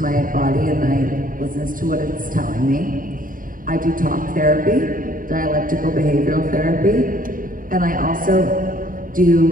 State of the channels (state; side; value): late; left; 0.40 ms